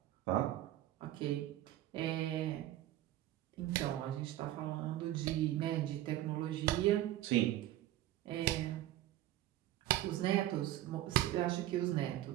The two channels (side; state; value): left; quieter; 14.3 dB